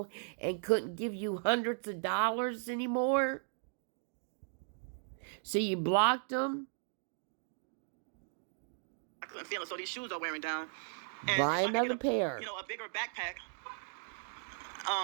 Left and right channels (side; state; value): left; silent; digital silence